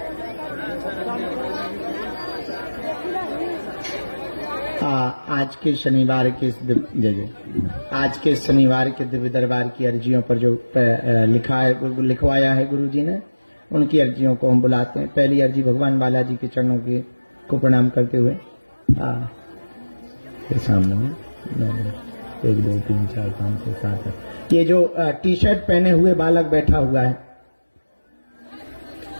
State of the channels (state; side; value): inverted; both; correlation -1.00